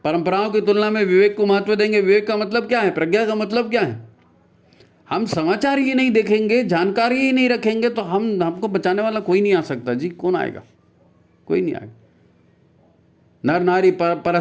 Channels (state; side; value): identical; both; correlation 1.00